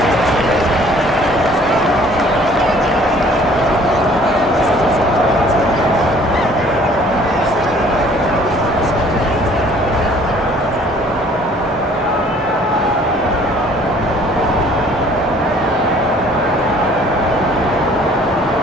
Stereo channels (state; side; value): normal; both; correlation 0.55